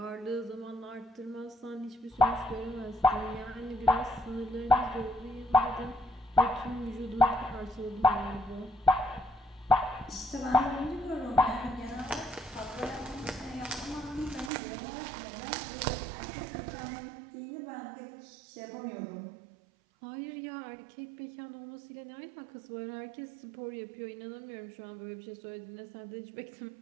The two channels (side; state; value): left; drops out; at 14.5 s